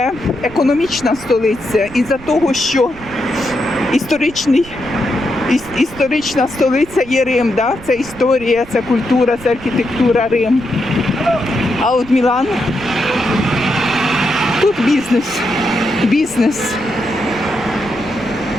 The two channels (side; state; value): right; noise; rumble, 18 dB below the sound